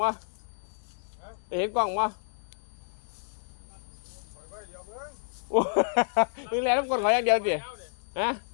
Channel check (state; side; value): silent; right; digital silence